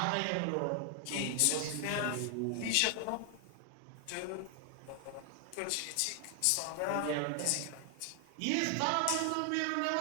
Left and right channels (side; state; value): both; different; correlation 0.00